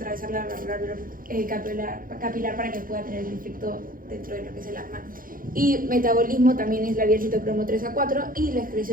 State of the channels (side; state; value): left; late; 0.41 ms